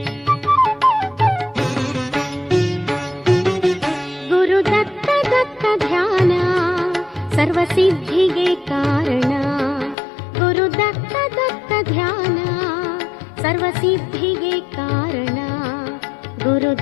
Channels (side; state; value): right; drops out; at 10.0 s